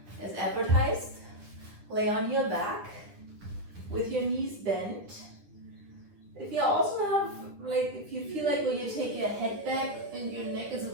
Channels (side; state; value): left; late; 9.9 ms